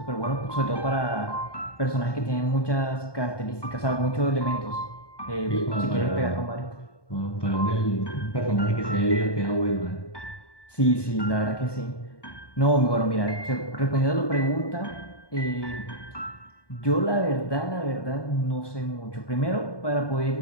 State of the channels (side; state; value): right; late; 1.2 ms